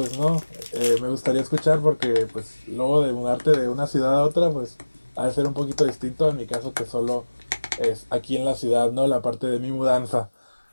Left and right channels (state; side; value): inverted; both; correlation -1.00